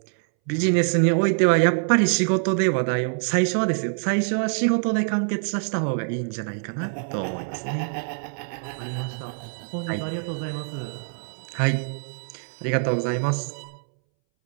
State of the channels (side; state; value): left; silent; 62 dB below the other